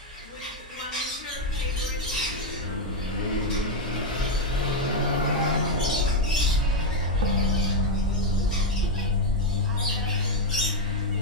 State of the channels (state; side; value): normal; both; correlation 0.04